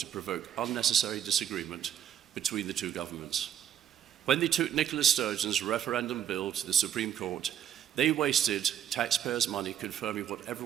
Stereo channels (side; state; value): left; quieter; 10.2 dB